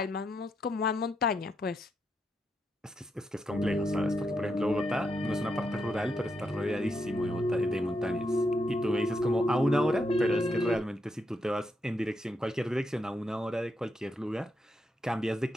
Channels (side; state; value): both; normal; correlation 0.81